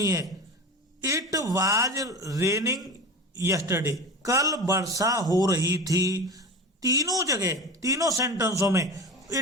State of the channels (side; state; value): both; normal; correlation 0.30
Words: है। इट वाज रेनिंग यस्टरडे, कल वर्षा हो रही थी। तीनों जगह तीनों सेंटेंसों में